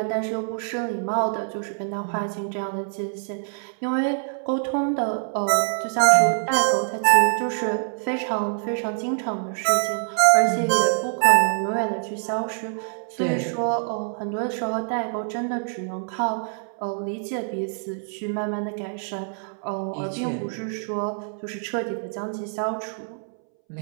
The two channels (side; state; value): left; silent; 62 dB below the other